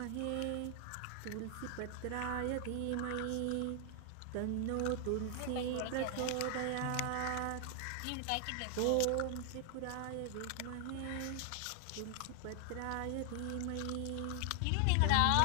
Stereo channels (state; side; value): different; both; correlation 0.00